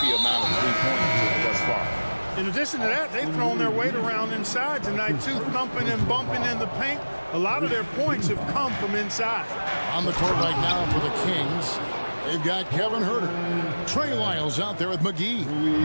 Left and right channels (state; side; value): inverted; both; correlation -1.00